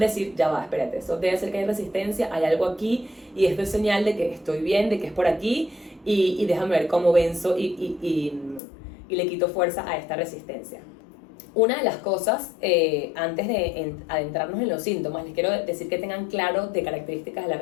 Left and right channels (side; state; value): right; drops out; at 8.6 s